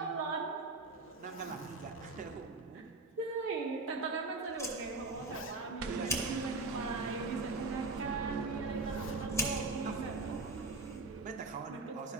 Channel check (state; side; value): quieter; left; 3.3 dB